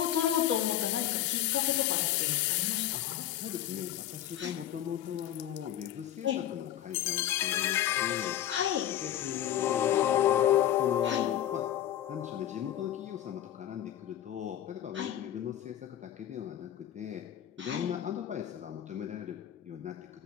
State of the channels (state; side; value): quieter; right; 11.6 dB